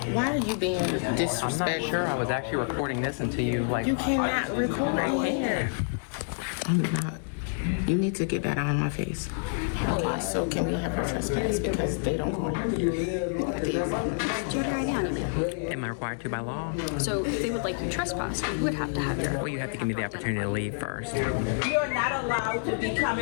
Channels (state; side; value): silent; right; digital silence